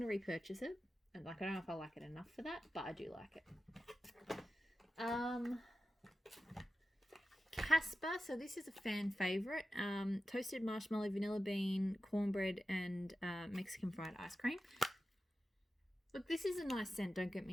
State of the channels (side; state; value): both; normal; correlation 0.93